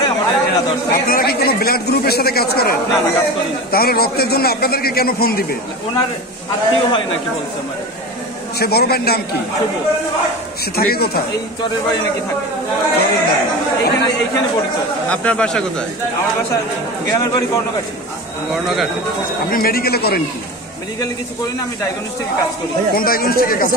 আমাদের এরা ধরছে। আপনারা কি কোনো ব্লাড গ্রুপের সাথে কাজ করেন? না না, কাজ করি না। তাহলে রক্তের জন্য আপনাদেরকে কেন ফোন দিবে? ওনার আত্মীয় হয় নাকি বলছে আমার। সে বড় ভাইয়ের নাম কি? শুভ। সে থাকে কোথায়? এই চরের বাড়ি নাকি থাকে, চরের বাড়ি। এইখানে পরিচয়। আপনার বাসা কোথায়? আমার বাসা গ্রামের বাড়ি কর্ণঘাট। কর্ণঘাট। আপনি মেডিকেলে করেন কি? মেডিকেলে কিছু করি না, আমি ডায়াগনস্টিকে কাজ করি। কোন ডায়াগনস্টিকে কাজ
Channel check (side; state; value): both; normal; correlation 0.29